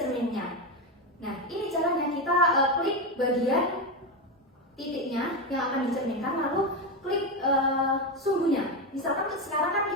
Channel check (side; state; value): both; normal; correlation 0.12